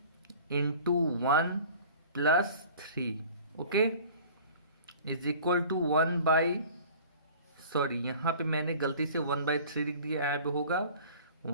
into 1 plus 3। Okay, is equal to 1/, यहाँ पे मैंने गलती से 1/3 लिख दिया, यहाँ पे होगा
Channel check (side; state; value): both; inverted; correlation -0.44